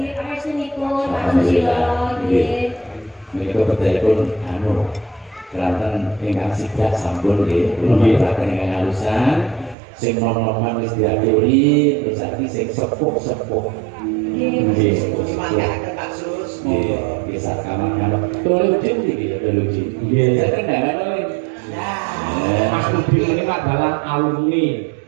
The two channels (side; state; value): left; drops out; at 9.8 s